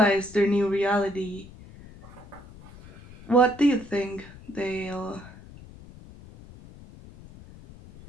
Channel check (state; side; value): noise; left; rumble, 19 dB below the sound